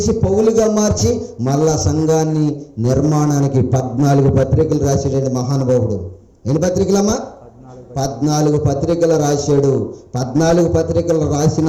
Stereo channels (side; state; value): both; identical; correlation 1.00